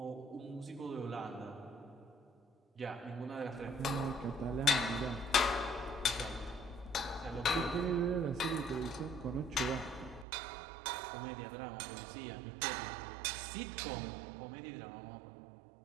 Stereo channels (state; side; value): drops out; left; at 10.2 s